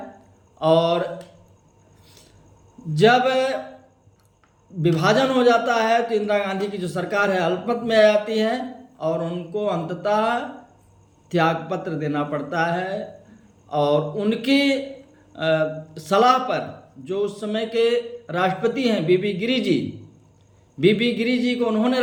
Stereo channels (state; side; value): identical; both; correlation 1.00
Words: और जब विभाजन हो जाता है तो इंदिरा गांधी की जो सरकार है अल्पमत में आ जाती है और उनको अंततः त्यागपत्र देना पड़ता है। और उनकी सलाह पर जो उस समय के राष्ट्रपति हैं बीबी गिरी जी को उन्होंने